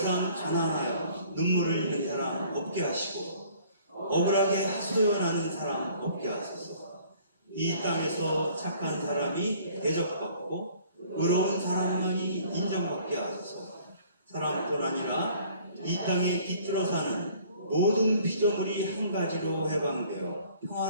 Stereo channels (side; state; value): both; inverted; correlation -0.55